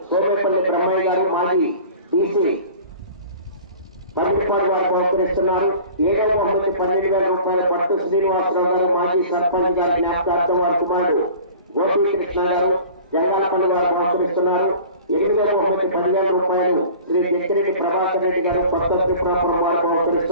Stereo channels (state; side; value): inverted; both; correlation -0.43